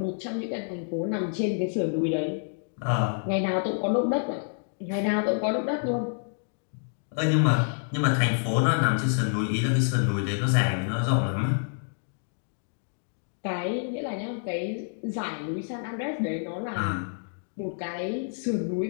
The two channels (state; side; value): silent; right; digital silence